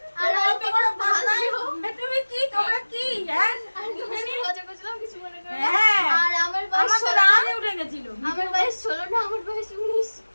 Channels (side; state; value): both; inverted; correlation -1.00